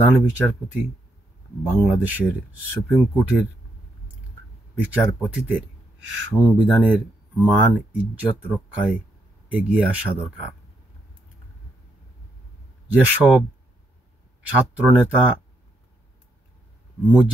বিচারপতি, বাংলাদেশের সুপ্রিম কোর্টের বিচারপতিদের সংবিধানের মান ইজ্জত রক্ষায় এগিয়ে আসা দরকার। যেসব ছাত্রনেতা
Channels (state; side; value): normal; both; correlation 0.78